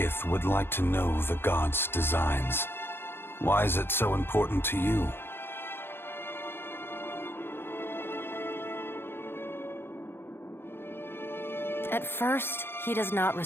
would like to know the god's designs. Why is it so important to you? At first, he does not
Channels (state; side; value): late; right; 0.11 ms